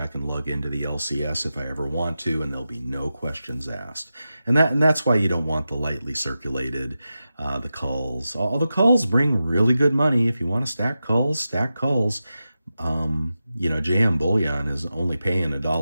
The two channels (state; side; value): inverted; both; correlation -0.92